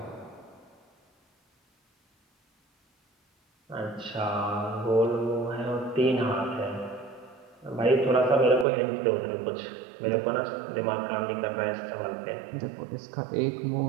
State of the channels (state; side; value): drops out; left; at 8.7 s